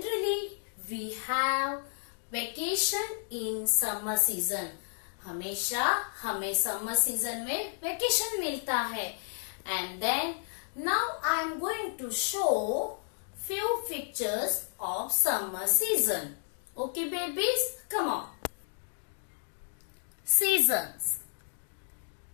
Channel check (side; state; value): right; silent; digital silence